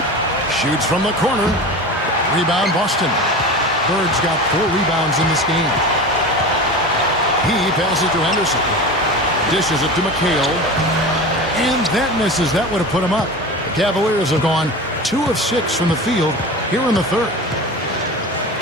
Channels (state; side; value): normal; both; correlation 0.30